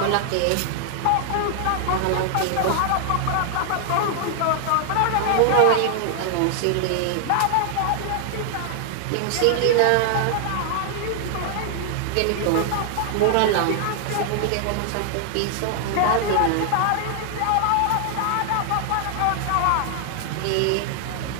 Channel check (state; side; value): different; both; correlation 0.00